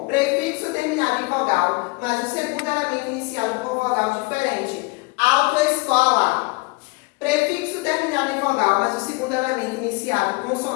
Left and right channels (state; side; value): quieter; right; 27.4 dB